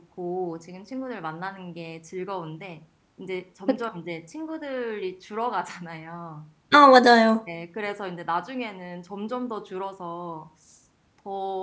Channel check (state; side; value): identical; both; correlation 1.00